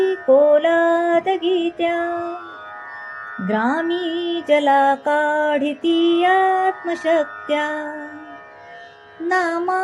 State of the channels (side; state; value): both; identical; correlation 1.00